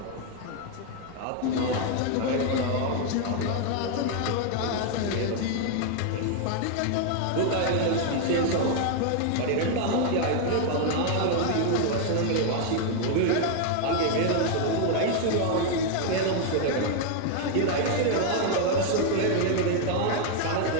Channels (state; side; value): different; both; correlation 0.00